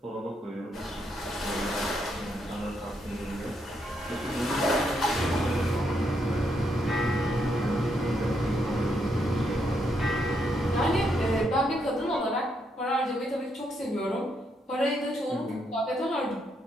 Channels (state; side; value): normal; both; correlation 0.77